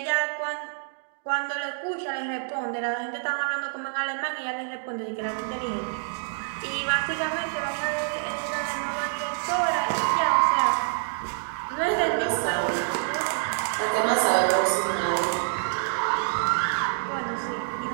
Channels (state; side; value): silent; left; digital silence